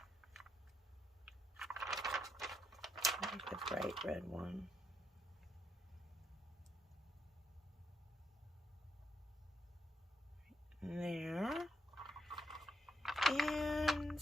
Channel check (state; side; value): normal; both; correlation 0.79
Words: I like the bright red one. There. And